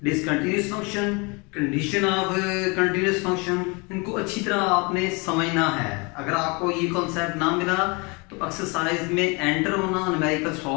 discontinuous function, condition of continuous function, इनको अच्छी तरह आपने समझना है। अगर आपको ये कॉन्सेप्ट ना मिला तो एक्सरसाइज में एंटर होना, न्यूमेरिकल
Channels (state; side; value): quieter; right; 29.3 dB